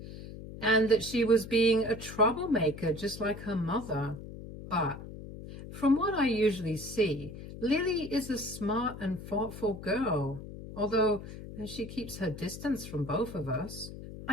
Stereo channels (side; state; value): left; noise; hum, 12 dB below the sound